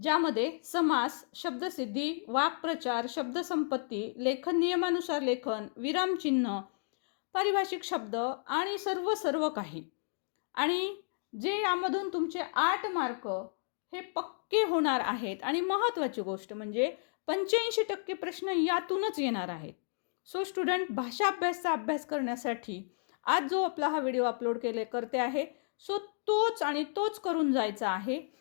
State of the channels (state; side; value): silent; right; digital silence